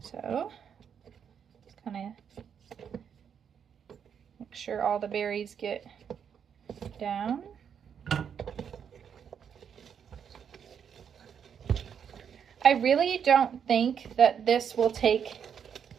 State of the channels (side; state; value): left; quieter; 7.8 dB